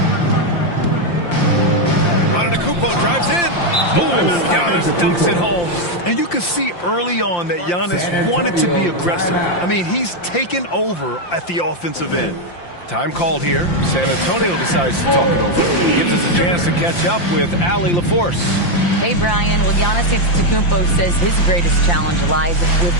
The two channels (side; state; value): right; late; 5.8 ms